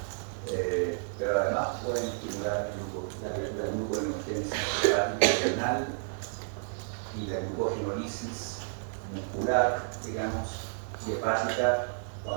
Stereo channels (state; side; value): silent; left; digital silence